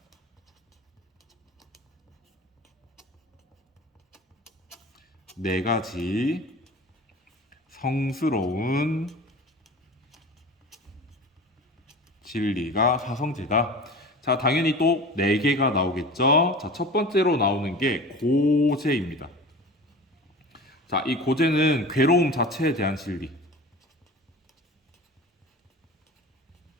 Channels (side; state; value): both; normal; correlation 0.36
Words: 네 가지 성스러운 진리가 사성제다. 자, 당연히 또 네 개가 나오겠죠. 자, 첫 번째로 나오는 게 고제입니다. 자, 이 고제는 괴로움 자체에 대한 진리.